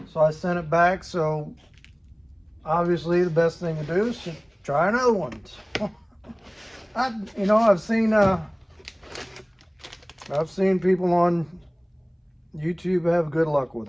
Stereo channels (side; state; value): both; identical; correlation 1.00